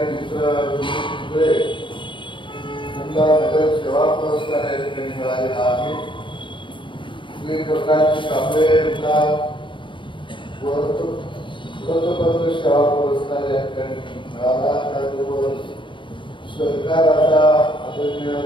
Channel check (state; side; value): late; right; 0.24 ms